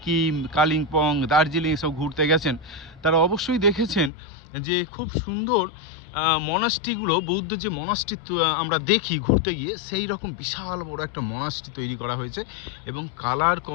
কালিম্পং, দার্জিলিং সব ঘুরতে গেছেন তারা অবশ্যই দেখেছেন যে খুব সুন্দর মনাস্ট্রিগুলো, বৌদ্ধ যে মনাস্ট্রি আমরা দেখি ঘুরতে গিয়ে, সেই রকম বিশাল বড় একটা মনাস্ট্রি তৈরি করা হয়েছে। এবং কালার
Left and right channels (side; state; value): right; drops out; at 4.1 s